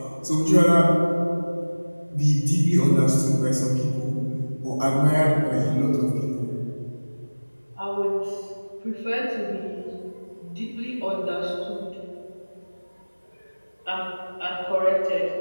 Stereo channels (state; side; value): inverted; both; correlation -1.00